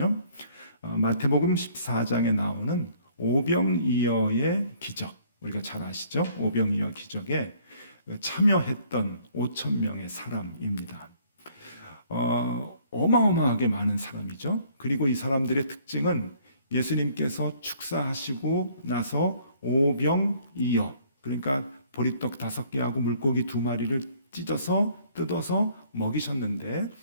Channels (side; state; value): both; inverted; correlation -0.60